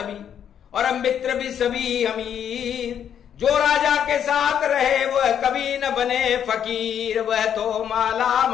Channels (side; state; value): right; quieter; 9.0 dB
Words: और मित्र भी सभी अमीर। जो राजा के साथ रहे वह कभी न बने फकीर, वह तो माला